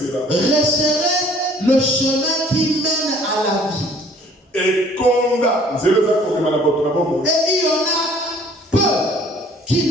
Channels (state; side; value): normal; both; correlation 0.55